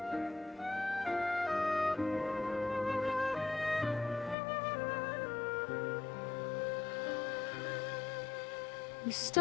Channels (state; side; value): drops out; right; at 4.4 s